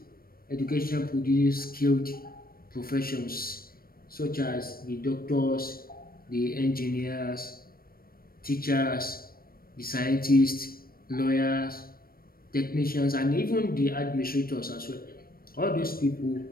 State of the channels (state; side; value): late; right; 0.43 ms